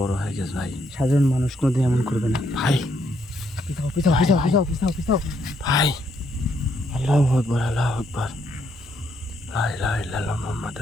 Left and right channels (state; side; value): normal; both; correlation 0.74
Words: হয়ে গেছে ভাই। সাধারণ মানুষ কোনোদিন এমন করবে না। ভাই পিছাও, পিছাও, পিছাও, পিছাও, পিছাও, পিছাও। ভাই আল্লাহু আকবার, আল্লাহু আকবার, লা ইলাহা ইল্লাল্লাহ